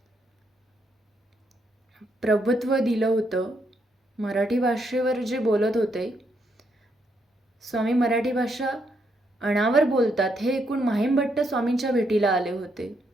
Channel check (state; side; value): normal; both; correlation 0.77